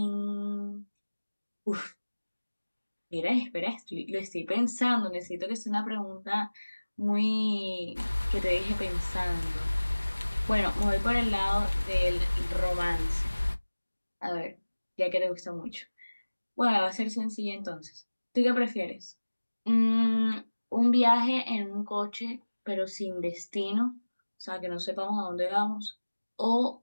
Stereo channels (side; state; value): both; inverted; correlation -1.00